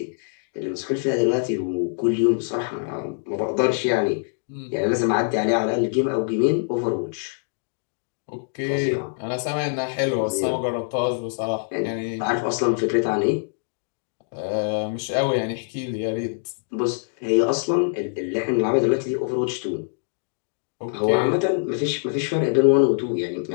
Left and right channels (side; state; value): right; silent; digital silence